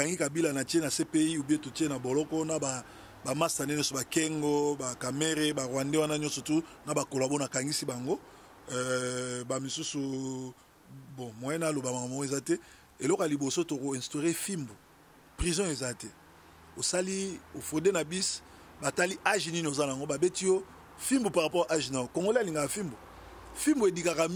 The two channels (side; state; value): both; identical; correlation 1.00